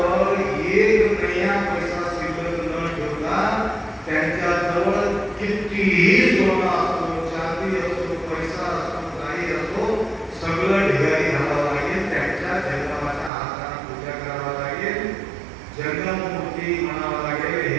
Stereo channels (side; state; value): left; drops out; at 13.3 s